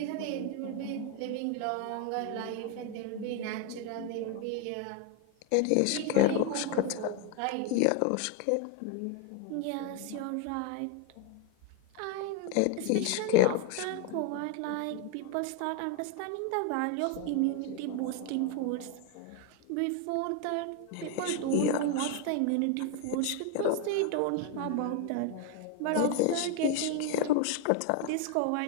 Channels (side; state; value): both; different; correlation 0.01